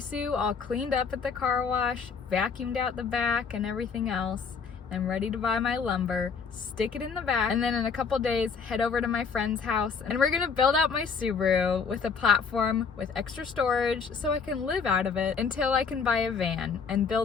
all cleaned up at the car wash, vacuumed out the back and everything else. I'm ready to buy my lumber, stick it in the back, and then in a couple days head over to my friend's house and we're gonna build out my Subaru with a platform with extra storage so I can live out of it until I can buy a van and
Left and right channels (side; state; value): right; quieter; 5.8 dB